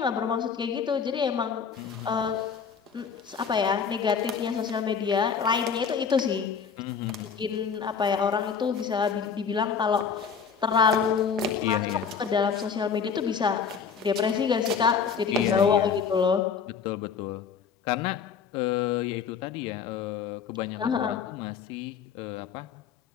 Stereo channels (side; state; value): right; quieter; 6.4 dB